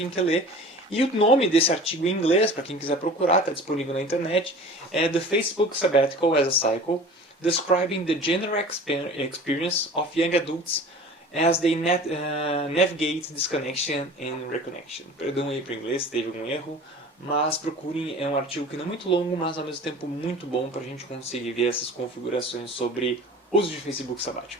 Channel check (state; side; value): normal; both; correlation 0.41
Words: quer ler. E o nome desse artigo em inglês, para quem quiser procurar, está disponível na internet, é The Facebook Sabbatical as a Cycle, Describing the General Experience of Young Adults as they navigate disconnection and reconnection. Perdão aí para o inglês, teve algum erro, mas procurem, é um artigo que não é muito longo, mas ao mesmo tempo muito bom para a gente conseguir ver essas configurações sobre uso de Facebook